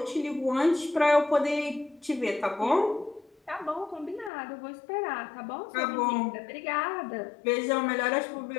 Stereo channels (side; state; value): right; drops out; at 4.3 s